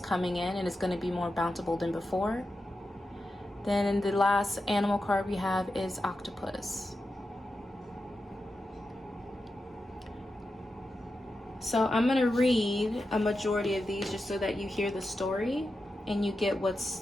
in, and it's going to be more bountiful than before. Then the last animal card we have is Octopus. So I'm going to read a majority of these just so that you hear the story and you get what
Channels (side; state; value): both; normal; correlation 0.90